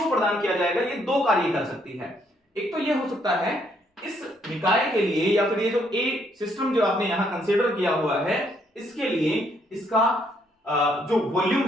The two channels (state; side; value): normal; both; correlation 0.70